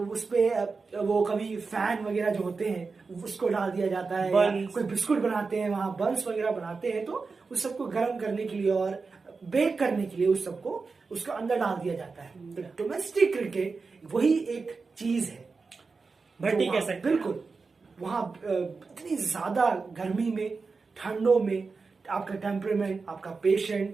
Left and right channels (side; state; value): left; quieter; 4.5 dB